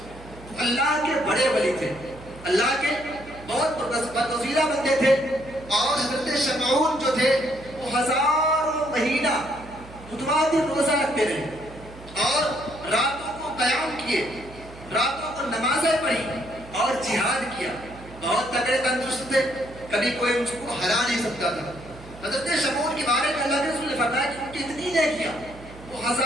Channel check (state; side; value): noise; right; hum, 18 dB below the sound